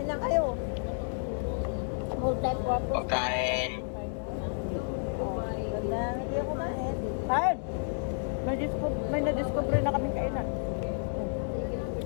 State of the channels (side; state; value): right; silent; digital silence